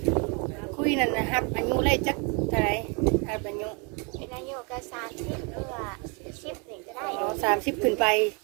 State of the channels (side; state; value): left; quieter; 33.5 dB